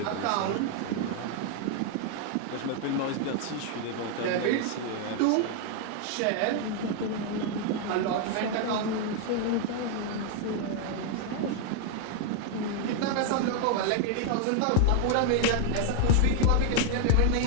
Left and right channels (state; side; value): different; both; correlation 0.00